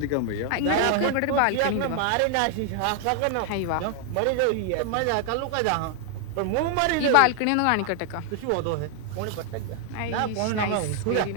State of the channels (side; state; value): both; different; correlation 0.00